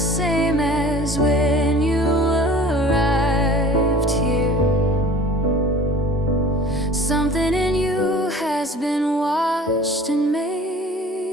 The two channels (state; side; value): normal; both; correlation 0.44